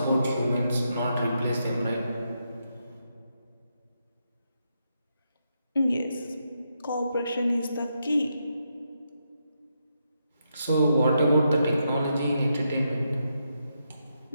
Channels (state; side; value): inverted; both; correlation -0.82